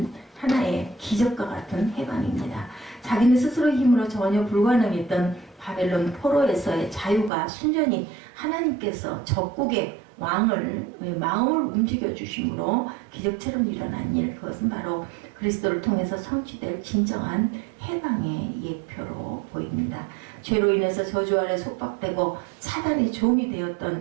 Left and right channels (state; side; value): drops out; left; at 7.3 s